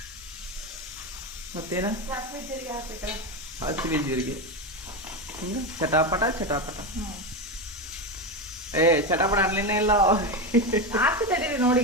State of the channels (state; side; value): normal; both; correlation 0.15